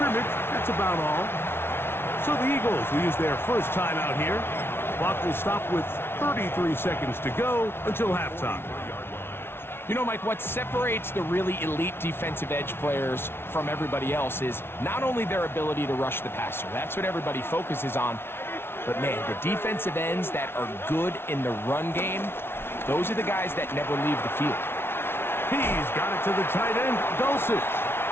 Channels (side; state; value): right; late; 0.12 ms